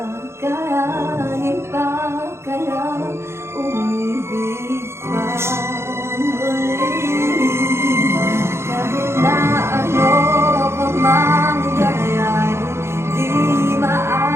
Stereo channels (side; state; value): left; late; 0.13 ms